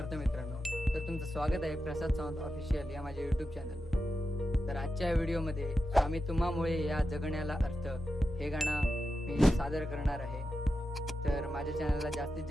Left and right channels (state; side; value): normal; both; correlation 0.90